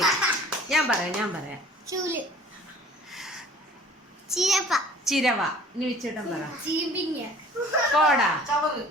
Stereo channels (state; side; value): normal; both; correlation 0.50